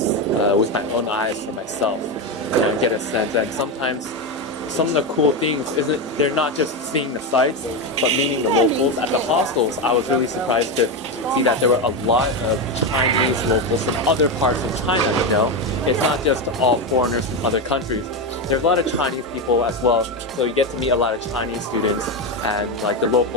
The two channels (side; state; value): both; normal; correlation 0.11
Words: with my own eyes for myself, you know, and get a sense. And sometimes some of the cool things they're not just seeing the sights, but meeting the locals. At the hostels, I was really surprised to see that there were a lot of Chinese locals from other parts of China, you know. It's not just all foreigners from other countries. There's a lot of Chinese people as well, so you get to meet a lot of Chinese students and like the